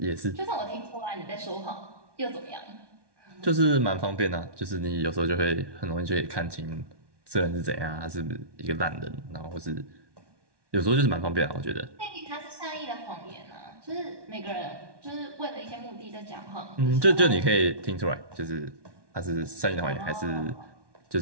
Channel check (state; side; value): late; left; 1.2 ms